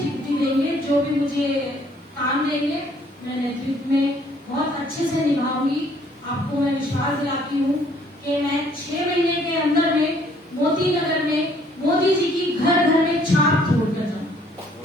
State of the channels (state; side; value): normal; both; correlation 0.62